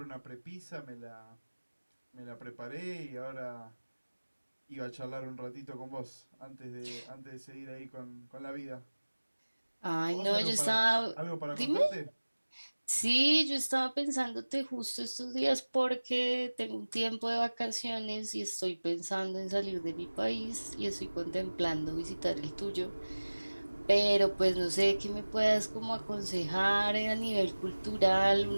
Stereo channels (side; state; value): both; inverted; correlation -1.00